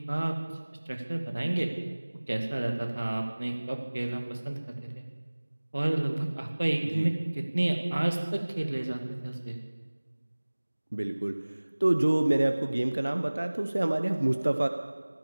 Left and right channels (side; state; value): both; inverted; correlation -1.00